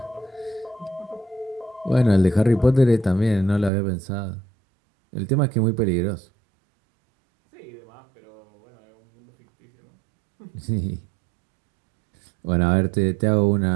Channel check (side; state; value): left; drops out; at 3.7 s